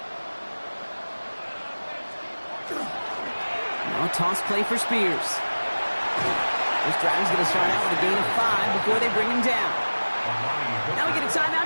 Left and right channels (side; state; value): both; inverted; correlation -1.00